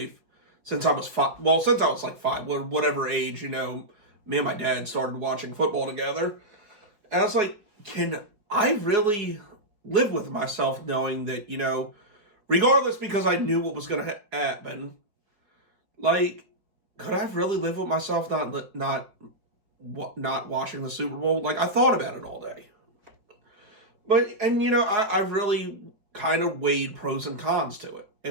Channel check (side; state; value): left; late; 4.8 ms